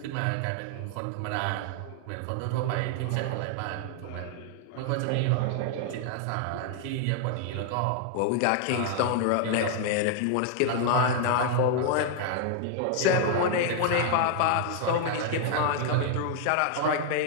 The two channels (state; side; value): different; both; correlation 0.00